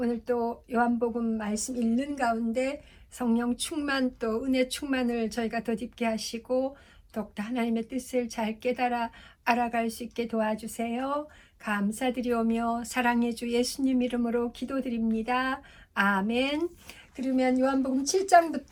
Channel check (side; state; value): both; identical; correlation 1.00